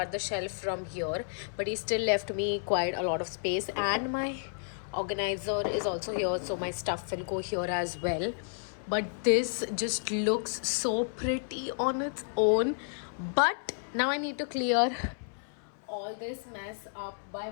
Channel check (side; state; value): right; silent; 57 dB below the other